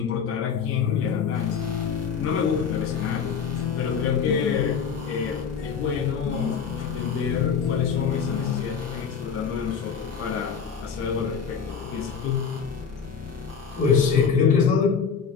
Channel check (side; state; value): right; quieter; 6.5 dB